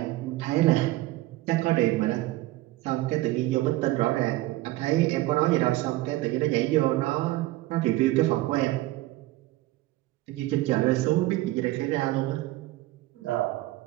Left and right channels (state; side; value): quieter; left; 17.7 dB